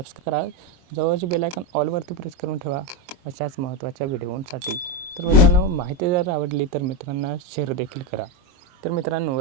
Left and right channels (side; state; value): left; late; 23 ms